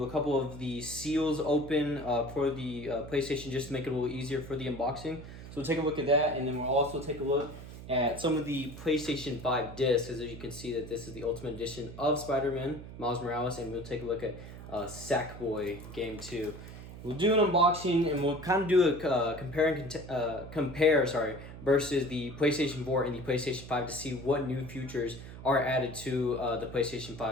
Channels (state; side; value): noise; right; hum, 13 dB below the sound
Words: a couple of the seals open for the PlayStation just to make it a little easier for the unboxing. So we'll take a look at that, and then we'll also take a look at some of the PlayStation 5 discs, as you can see that this is the Ultimate Edition of Spider-Man, Miles Morales, and we'll take a look at Sackboy Game 2. We'll do an unboxing, and we'll kind of do a compare versus the PlayStation 4 and the PlayStation 5 to see what new features are added to the PlayStation